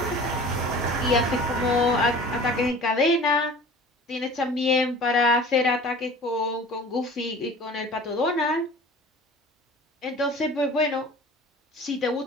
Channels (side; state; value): both; normal; correlation 0.42